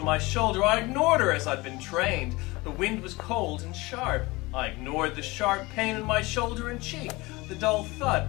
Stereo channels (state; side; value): quieter; right; 22.7 dB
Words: my shoulder. I ignored her as I'd been trained. The wind was cold and sharp. I ignored the sharp pain in my shoulder and cheek, the dull thud,